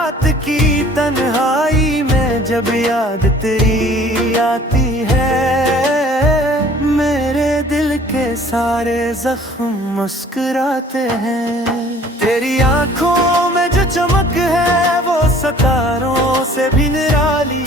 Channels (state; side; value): normal; both; correlation 0.52